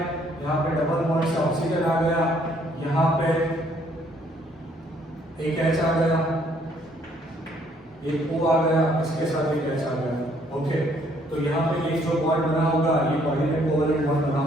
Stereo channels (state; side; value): normal; both; correlation 0.65